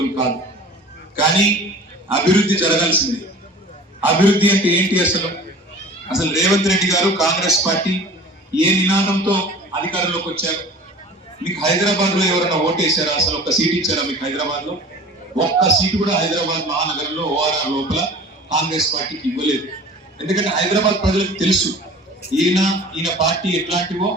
కాదు. కానీ అభివృద్ధి జరగాల్సింది. అభివృద్ధి అంటే ఏంటి? అసలు రేవంత్ రెడ్డి గారు కాంగ్రెస్ పార్టీ ఏ నినాదంతో అధికారంలోకి వచ్చారు? మీకు హైదరాబాద్ లో ఎవరైనా ఓటేశారా? అసలు ఒక్క సీట్ ఇచ్చారా మీకు హైదరాబాద్ లో? ఒక్క సీటు కూడా హైదరాబాద్ మహానగరంలో ఓఆర్ఆర్ లోపల కాంగ్రెస్ పార్టీకి ఇవ్వలేదు. ఎందుకంటే హైదరాబాద్ ప్రజలకు తెలుసు ఈయన పార్టీ ఎట్లాంటివో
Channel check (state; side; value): normal; both; correlation 0.42